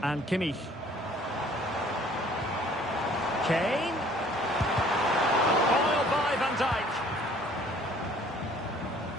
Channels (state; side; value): normal; both; correlation 0.55